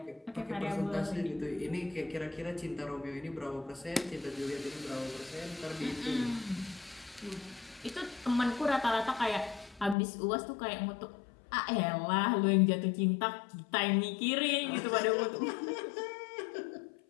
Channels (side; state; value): right; drops out; at 10.0 s